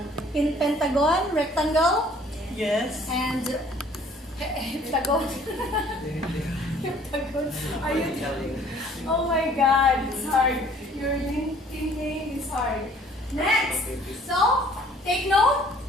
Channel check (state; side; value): normal; both; correlation 0.56